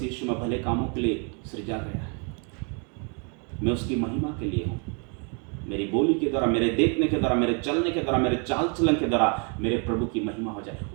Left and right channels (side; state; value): left; quieter; 37.7 dB